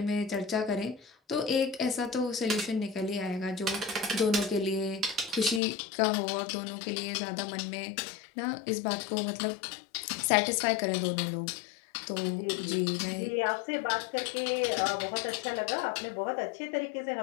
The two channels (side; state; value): right; drops out; at 5.6 s